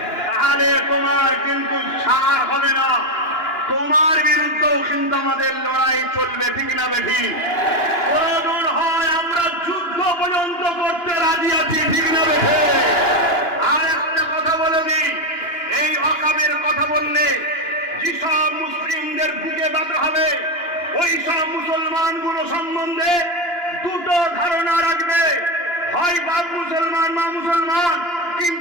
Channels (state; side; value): late; right; 2.9 ms